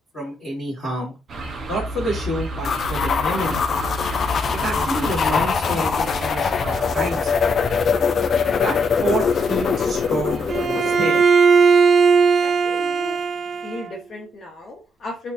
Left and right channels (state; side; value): normal; both; correlation 0.76